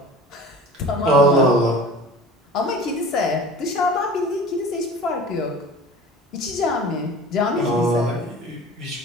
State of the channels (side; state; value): both; normal; correlation 0.40